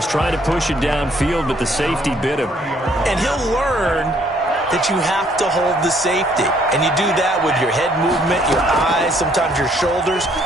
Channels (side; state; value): both; normal; correlation 0.65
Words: trying to push it downfield, but the safety bit him. And he'll learn that you have to hold the safety. And you do that with your head movement, your eyes, sometimes your shoulders.